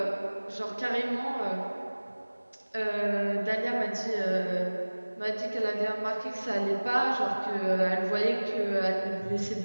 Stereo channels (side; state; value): both; inverted; correlation -1.00